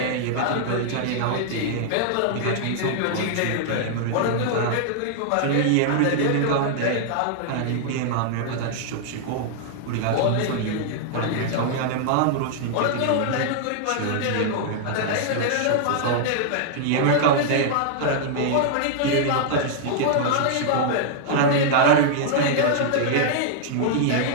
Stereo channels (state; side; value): different; both; correlation -0.01